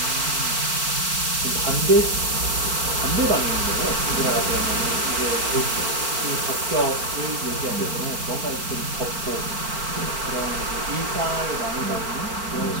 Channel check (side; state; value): left; late; 4.4 ms